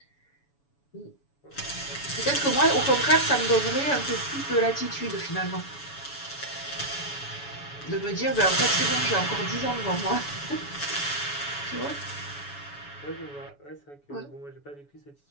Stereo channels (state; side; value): late; right; 7.0 ms